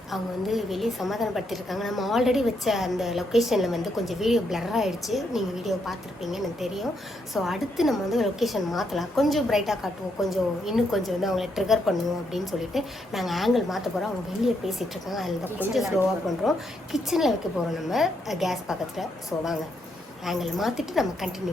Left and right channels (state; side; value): normal; both; correlation 0.77